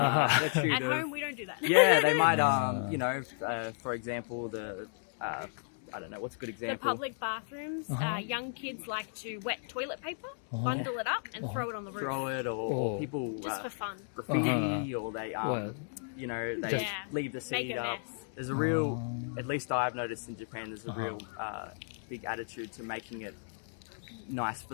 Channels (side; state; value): right; silent; digital silence